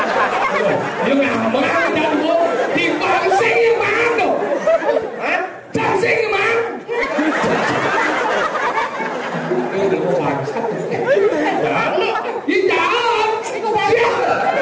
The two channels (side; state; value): both; identical; correlation 1.00